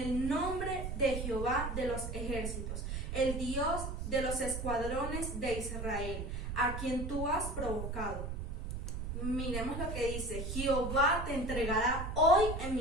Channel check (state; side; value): noise; right; rumble, 4 dB below the sound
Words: nombre de Jehová de los ejércitos, el Dios de los escuadrones de Israel, a quien tú has provocado. Miremos lo que dice: Jehová te entregará hoy en